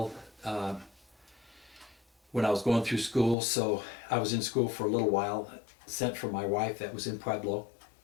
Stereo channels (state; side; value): drops out; right; at 3.4 s